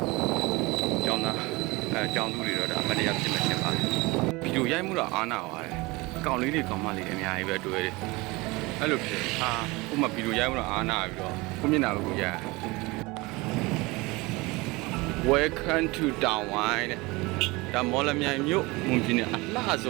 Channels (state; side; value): quieter; left; 23.5 dB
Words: ကျောင်းသားကျောင်းသူတွေတော့ဒါအမတရားဖြစ်မှဖြစ်ပါတယ်ဗီဒီယိုရိုက်မှုတော့အားနာပါတယ်ကောင်လေးတွေကောင်မလေးတွေအများကြီးပဲတွေ့တယ်အဲ့လိုဖြစ်ဥပမာဗီဒီယိုရိုက်မှုတော့အားနာပြီးတော့ကိုမျက်နှာကိုရိုက် Welcome to တောင်ဝိုင်းတဲ့ဒါမော်လမြိုင်မြို့မွန်ပြည်နယ်အလှဆ